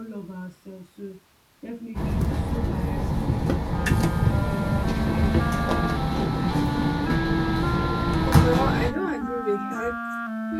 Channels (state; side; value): identical; both; correlation 1.00